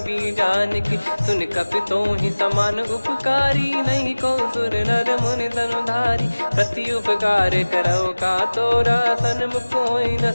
बीजान की। सुन कपि तोहि समान उपकारी नहीं को सुर नर मुनि तनुधारी। प्रति उपकार करो का तोरा सन्मुख कोई न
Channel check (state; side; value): inverted; both; correlation -1.00